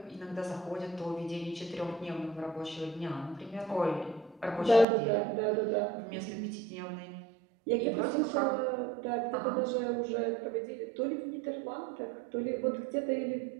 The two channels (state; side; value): drops out; left; at 4.9 s